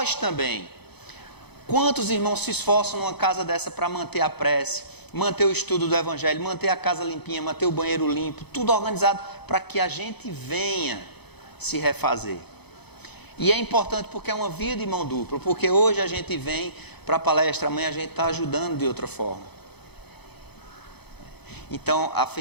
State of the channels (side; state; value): right; late; 0.98 ms